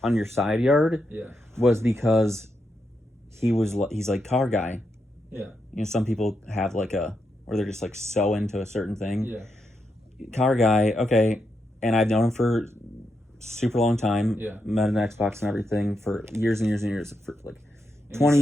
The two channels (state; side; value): normal; both; correlation 0.84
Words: on your side yard, was because he's like car guy. Yeah. You know, some people have like where they're just like so into a certain thing. Yeah. Car guy, okay, and I've known him for super long time. Yeah. Met an Xbox and everything for years and years and years, for like 20